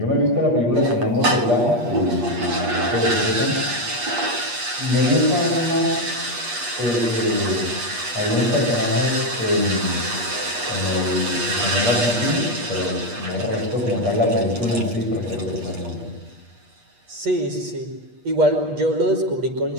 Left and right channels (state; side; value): late; left; 8.4 ms